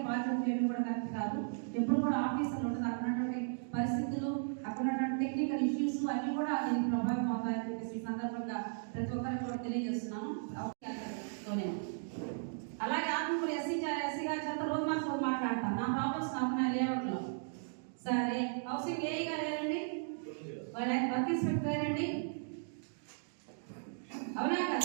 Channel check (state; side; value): silent; left; digital silence